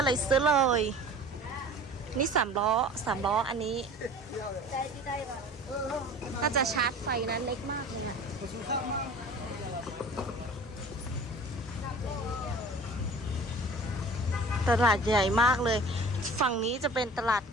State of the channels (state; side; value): normal; both; correlation 0.42